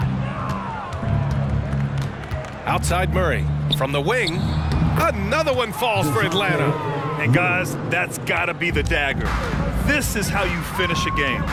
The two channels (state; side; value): identical; both; correlation 1.00